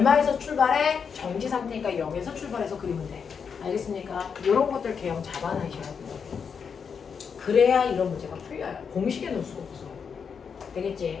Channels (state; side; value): quieter; right; 6.4 dB